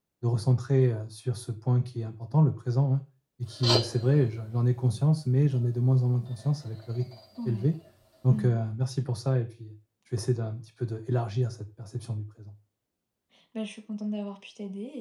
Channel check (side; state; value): both; identical; correlation 1.00